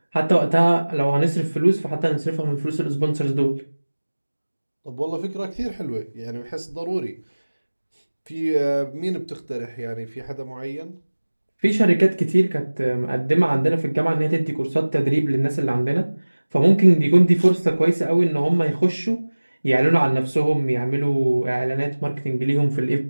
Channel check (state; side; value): inverted; both; correlation -1.00